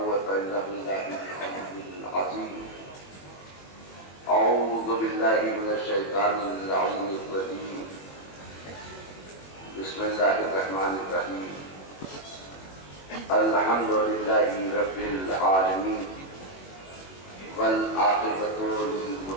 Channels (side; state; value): right; late; 21 ms